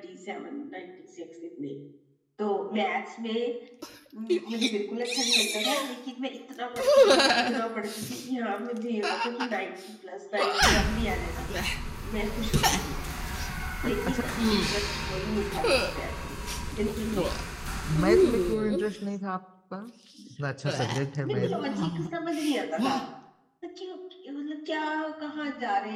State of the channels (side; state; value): both; identical; correlation 1.00